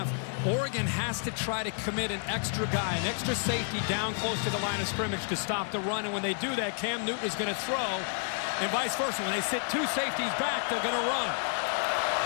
Oregon has to try to commit an extra guy, an extra safety down close to the line of scrimmage to stop the run. And when they do that, Cam Newton is going to throw, and vice versa. When they sit 2 safeties back, they're going to run.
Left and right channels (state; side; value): silent; right; 58 dB below the other